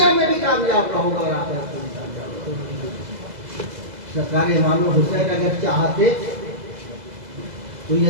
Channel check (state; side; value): late; left; 2.0 ms